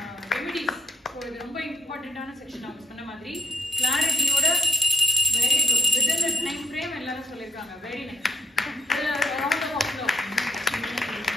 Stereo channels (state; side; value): normal; both; correlation 0.70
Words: Remedies இது ரொம்ப இம்பார்ட்டண்டான section அவங்க சொன்ன மாதிரி கிளாரிட்டியோட very good within the time frame எல்லாரும் சொல்லியிருக்காங்க very nice